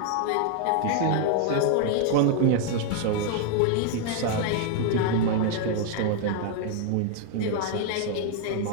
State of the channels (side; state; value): both; different; correlation 0.00